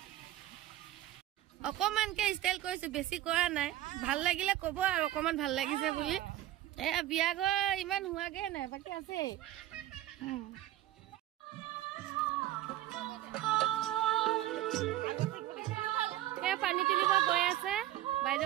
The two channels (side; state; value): left; quieter; 14.4 dB